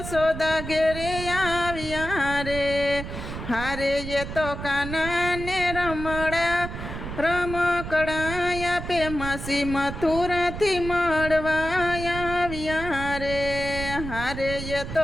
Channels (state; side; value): noise; right; rumble, 8 dB below the sound